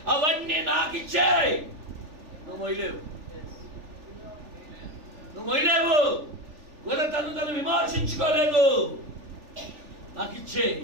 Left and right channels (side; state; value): left; late; 3.4 ms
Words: అవన్నీ నాకు ఇచ్చే. నువ్వు మొయ్యలేవు, నువ్వు మొయ్యలేవు. తను విమర్శించుకోలేదు. నాకు ఇచ్చే.